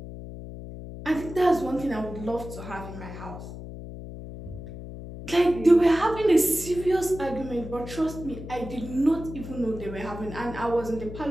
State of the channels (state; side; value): noise; left; hum, 11 dB below the sound